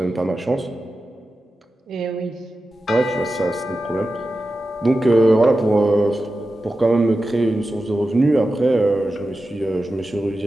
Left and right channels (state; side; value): normal; both; correlation 0.92